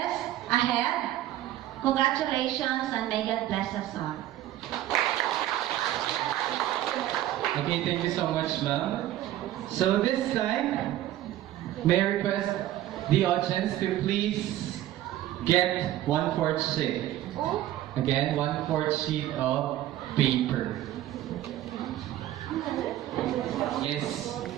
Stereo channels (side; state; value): left; quieter; 13.8 dB